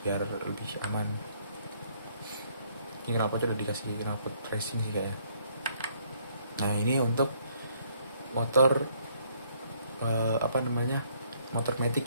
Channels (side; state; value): both; inverted; correlation -0.65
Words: biar lebih aman. Ini knalpotnya udah dikasih knalpot racing sih kayaknya. Nah ini untuk motor apa namanya, motor